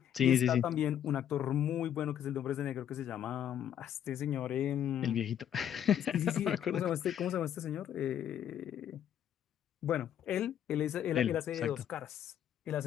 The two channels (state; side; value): quieter; right; 9.9 dB